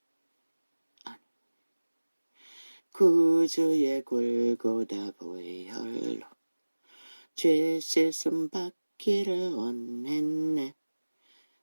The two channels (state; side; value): inverted; both; correlation -1.00